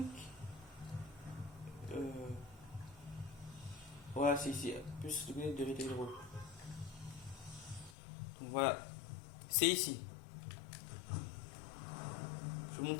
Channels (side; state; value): right; drops out; at 8.0 s